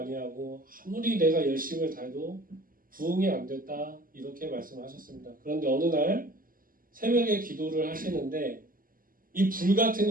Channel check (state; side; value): late; left; 0.41 ms